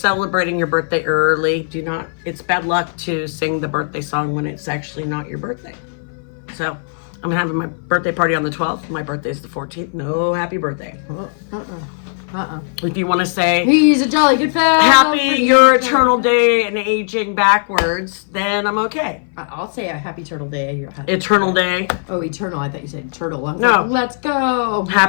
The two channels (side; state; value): right; silent; 61 dB below the other